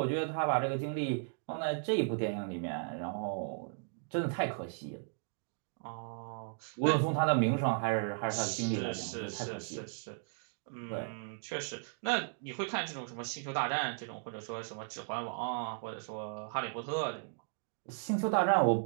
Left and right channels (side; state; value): left; silent; digital silence